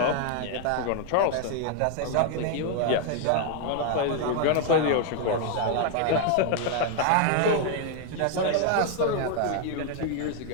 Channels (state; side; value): different; both; correlation 0.00